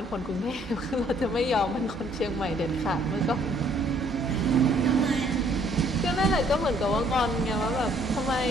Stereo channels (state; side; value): normal; both; correlation 0.63